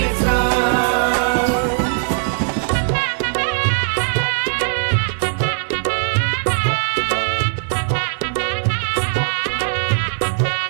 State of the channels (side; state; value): left; silent; digital silence